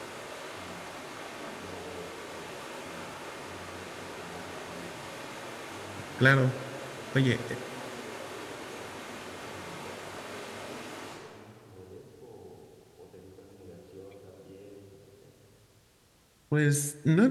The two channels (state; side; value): identical; both; correlation 1.00